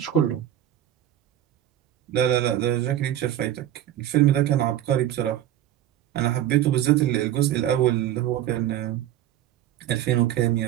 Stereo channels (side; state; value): left; quieter; 12.1 dB